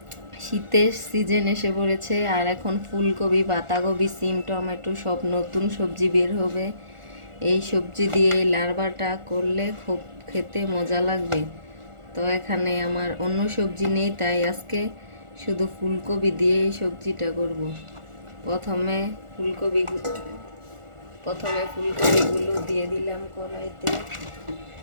শীতের সিজন এসে পড়েছে, আর এখন ফুলকপি, বাঁধাকপি, সিম, টমেটো সব নতুন সবজি বের হবে। এই সবজি দিয়ে এই লার্বাটা করলে খুব খেতে মজা লাগবে। তো এখানে আমার অন্য সবজি নেই, তাই আজকে শুধু ফুলকপি দিয়ে এই সবজিটা করব। প্রথমে ফুলকপিগুলো দিয়ে দিলাম কড়াইতে।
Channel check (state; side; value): late; left; 1.4 ms